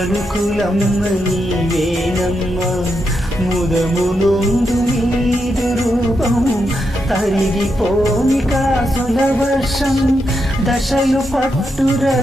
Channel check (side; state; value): both; normal; correlation 0.83